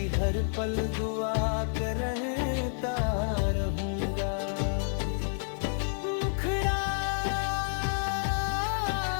हर पल दुआ करता रहूंगा। मुखड़ा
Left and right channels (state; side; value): silent; right; digital silence